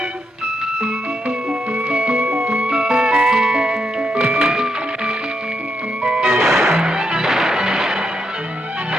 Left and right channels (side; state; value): both; normal; correlation 0.81